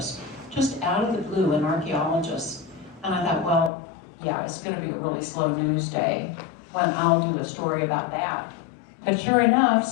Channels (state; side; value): drops out; right; at 3.7 s